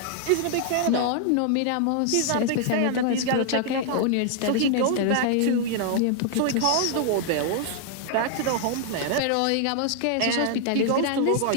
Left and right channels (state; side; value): different; both; correlation 0.00